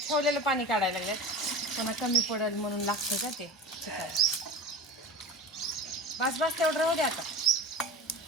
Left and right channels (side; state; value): both; normal; correlation 0.33